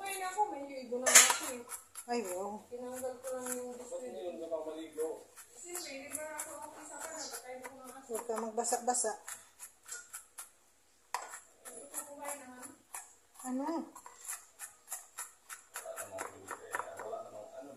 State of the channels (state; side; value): identical; both; correlation 1.00